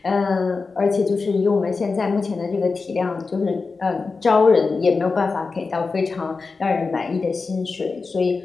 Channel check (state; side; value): quieter; right; 4.3 dB